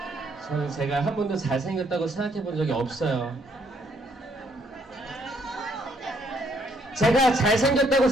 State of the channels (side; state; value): both; normal; correlation 0.69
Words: 저는 제가 한 번도 잘생겼다고 생각해 본 적이 없어요. 제가 잘생겼다고